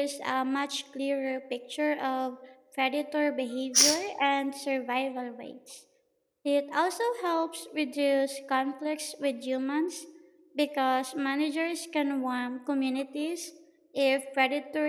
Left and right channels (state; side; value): identical; both; correlation 1.00